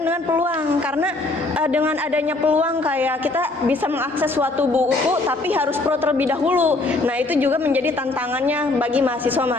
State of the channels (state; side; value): quieter; right; 3.1 dB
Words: dengan peluang, karena dengan adanya peluang kayak kita bisa mengakses suatu buku tapi harus pro terlebih dahulu. Nah itu juga menjadi tantangannya bagi